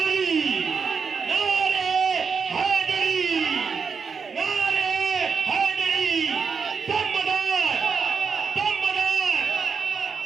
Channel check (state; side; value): quieter; left; 5.7 dB